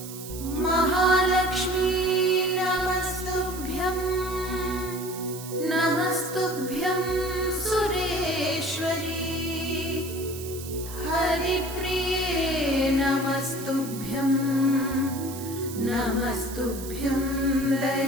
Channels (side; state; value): right; noise; hiss, 12 dB below the sound